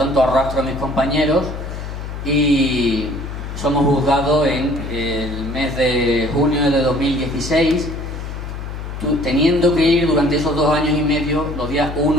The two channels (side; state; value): left; noise; hum, 8 dB below the sound